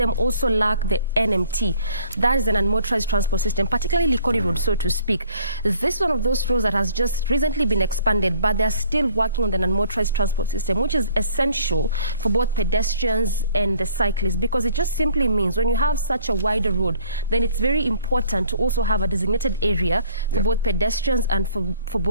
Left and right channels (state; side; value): inverted; both; correlation -0.56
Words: also lack the NMT. That is an unmotorized transport system, particularly Likoni Road, so to speak. This is one of those roads that has just recently been expanded, but they're still working on the unmotorized transport system, which is essential for both pedestrians and the cyclists, because it just simply means when you have such a wider road, then it's very important to also have a designated area for both pedestrians and for